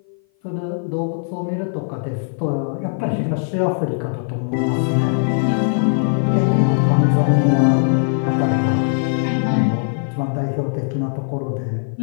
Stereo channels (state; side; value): silent; right; 56 dB below the other